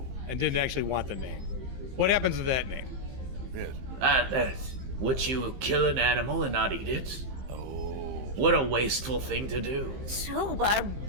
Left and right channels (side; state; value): left; late; 15 ms